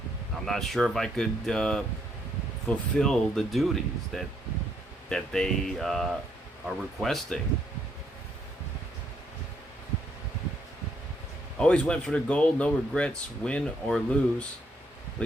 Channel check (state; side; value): normal; both; correlation 0.73